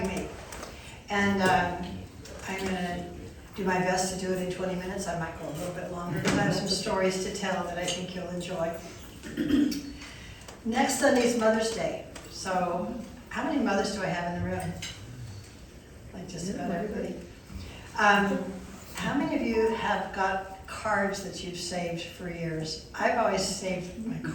me. And I'm gonna do my best to do it in 20 minutes. I might go a little bit longer because I have some stories to tell that I think you'll enjoy. Next Sunday is Mother's Day. So how many mothers do I have in the room? Like just about everybody. How many of you have got cards that you've saved for years? I've always saved my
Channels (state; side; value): identical; both; correlation 1.00